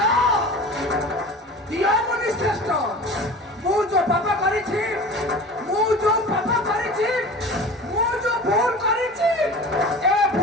दियो मुनि श्रेष्ठ मु जो पाप करिछि मु जो पाप करिछि मु जो भूल करिछि ए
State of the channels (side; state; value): both; normal; correlation 0.37